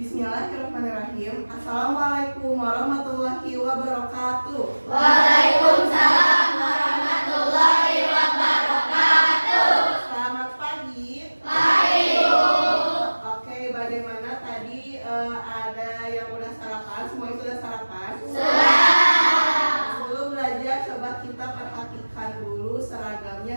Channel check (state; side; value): inverted; both; correlation -1.00